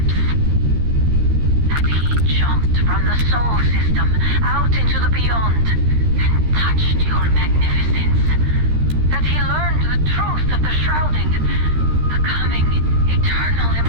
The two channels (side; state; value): left; late; 13 ms